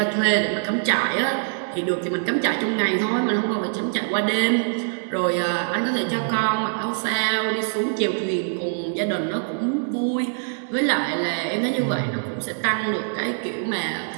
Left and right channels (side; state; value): left; silent; digital silence